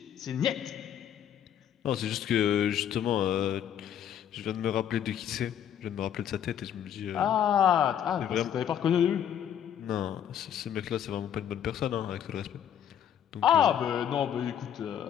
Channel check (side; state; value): right; quieter; 9.5 dB